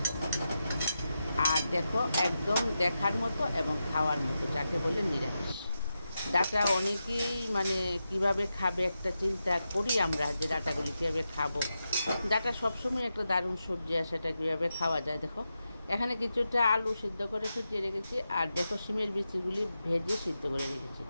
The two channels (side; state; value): both; inverted; correlation -0.89